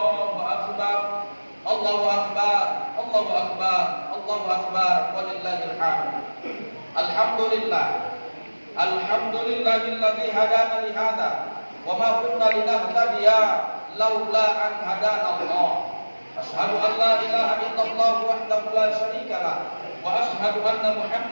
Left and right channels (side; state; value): both; inverted; correlation -1.00